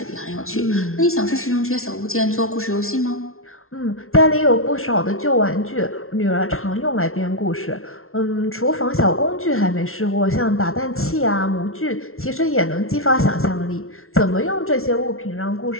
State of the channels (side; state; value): right; late; 0.62 ms